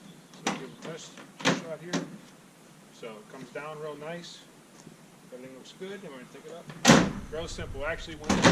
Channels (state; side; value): identical; both; correlation 1.00